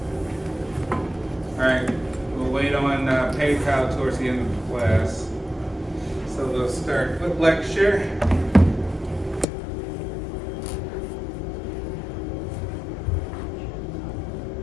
All right, we'll wait on PayPal towards the end of the class. So we'll start with lecture.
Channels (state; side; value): drops out; right; at 9.5 s